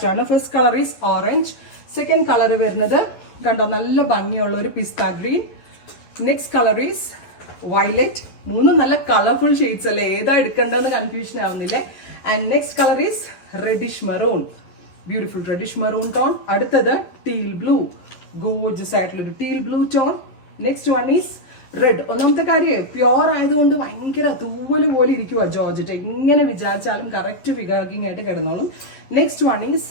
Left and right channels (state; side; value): late; right; 11 ms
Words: ആണ്. First colour is orange, second colour വരുന്നത് കണ്ടോ നല്ല ഭംഗിയുള്ള ഒരു pista green, next colour is violet. മൂന്നും നല്ല കളർഫുൾ ഷെയ്ഡ്സ് അല്ലേ, ഏതാ എടുക്കേണ്ടതെന്ന് കൺഫ്യൂഷൻ ആവുന്നില്ലേ. And next colour is reddish maroon, beautiful reddish maroon tone. അടുത്തത് ടീൽ ബ്ലൂ, ഗോർജസ് ആയിട്ടുള്ള ഒരു teal blue tone. Next one is red. ഒന്നാമത്തെ കാര്യം പ്യോർ ആയതുകൊണ്ട് ഭയങ്കര തൂവല് പോലെ ഇരിക്കുക ജോർജറ്റ്, എങ്ങനെ വിചാരിച്ചാലും കറക്റ്റ് ഫിഗറിംഗ് ആയിട്ട് കിടന്നോളും. Next one is